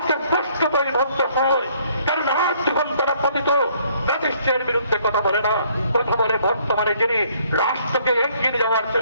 স্পষ্ট পরিবদ্ধ হয়। কারণ আজ যখন তারা পতিত জাতিষ্ঠের বিরুদ্ধে কথা বলে না, কথা বলে বর্তমানে যিনি রাষ্ট্রকে এগিয়ে যাওয়ার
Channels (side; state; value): both; inverted; correlation -0.63